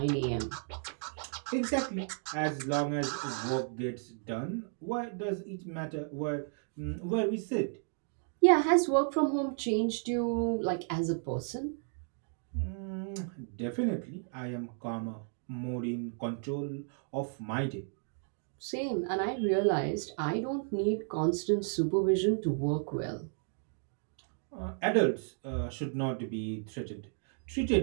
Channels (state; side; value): silent; left; 55 dB below the other